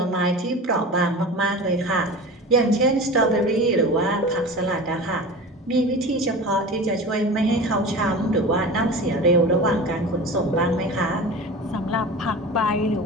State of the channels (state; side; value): normal; both; correlation 0.33